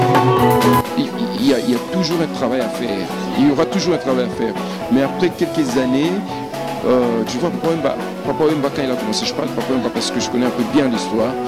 Il y a toujours un travail à faire. Il y aura toujours un travail à faire. Mais après quelques années, tu vois, Papa Wemba, quand il a commencé, je parle de Papa Wemba parce que je connais un peu bien l'histoire,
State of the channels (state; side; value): identical; both; correlation 1.00